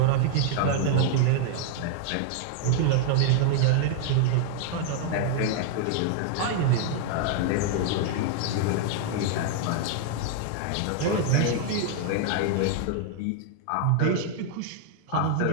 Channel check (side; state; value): both; different; correlation 0.00